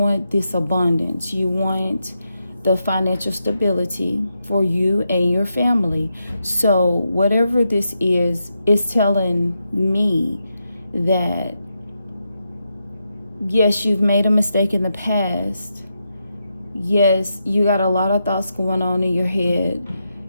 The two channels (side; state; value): both; inverted; correlation -0.85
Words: this abundance. You want the financial stability for you and your family. So whatever this is telling me that, yes, you've made a mistake in the past. Yes, you got a lot of thoughts going on in your head.